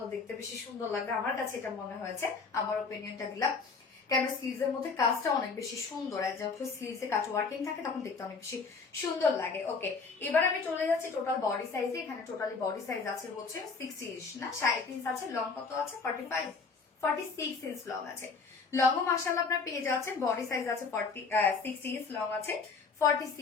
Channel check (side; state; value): right; quieter; 4.7 dB